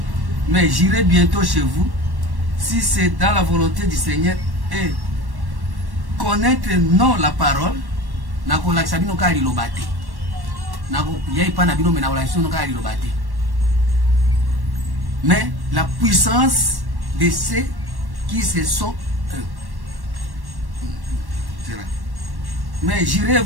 mais j'irai bientôt chez vous si c'est dans la volonté du Seigneur, et connaître non la parole nako la sabino ka lilobate nako yai pana bino mena wala sino ka lilobate. Mais la puissance de ceux qui se sont Mais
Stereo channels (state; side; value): late; left; 1.1 ms